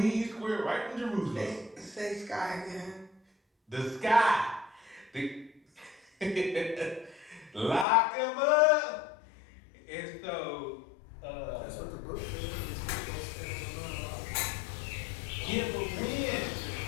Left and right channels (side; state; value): right; drops out; at 7.9 s